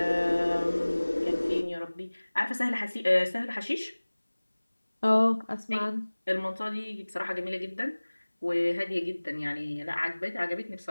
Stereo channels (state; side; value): inverted; both; correlation -1.00